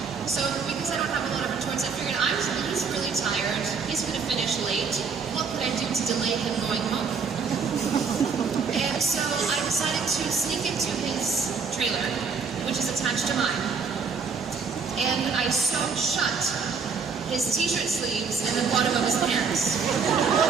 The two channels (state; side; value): quieter; left; 5.4 dB